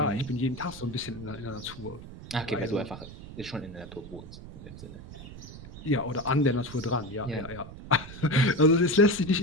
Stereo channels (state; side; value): noise; right; rumble, 14 dB below the sound